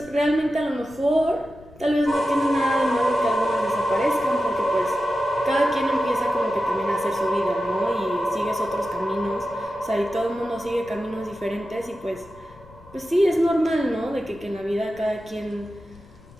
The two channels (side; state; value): left; noise; rumble, 24 dB below the sound